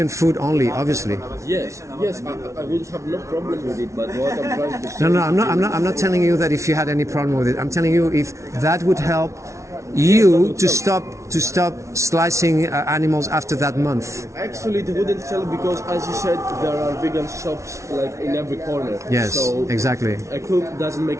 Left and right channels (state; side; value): late; left; 0.14 ms